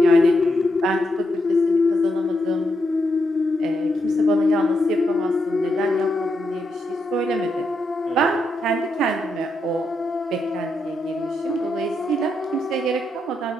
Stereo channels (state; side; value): normal; both; correlation 0.82